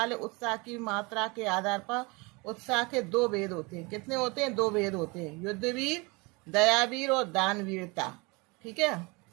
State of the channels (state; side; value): quieter; left; 27.3 dB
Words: उत्साह की मात्रा के आधार पर उत्साह के 2 भेद होते हैं। कितने होते हैं? 2 भेद होते हैं, युद्धवीर, दयावीर और दानवीरता। ठीक है।